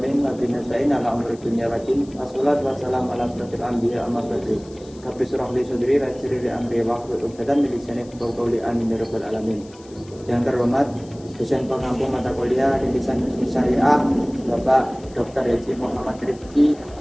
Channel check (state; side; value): noise; left; hiss, 25 dB below the sound